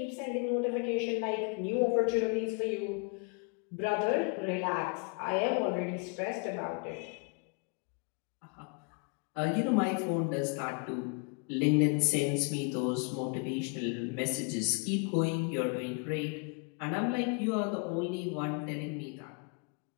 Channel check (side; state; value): right; quieter; 35.5 dB